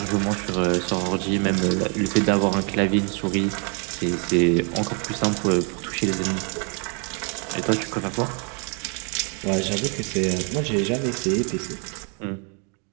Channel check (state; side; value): quieter; left; 36.9 dB